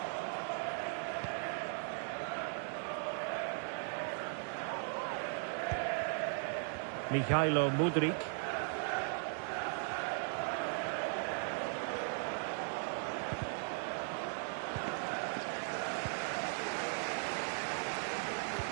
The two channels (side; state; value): left; silent; 52 dB below the other